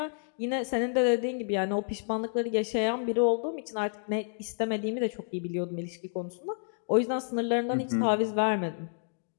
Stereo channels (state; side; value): silent; right; digital silence